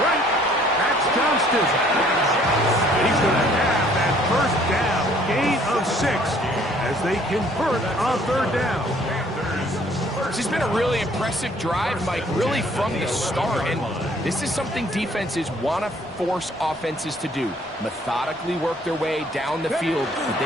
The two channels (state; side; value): normal; both; correlation 0.60